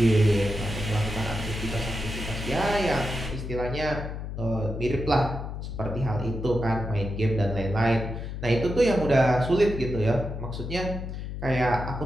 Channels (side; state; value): left; noise; hum, 6 dB below the sound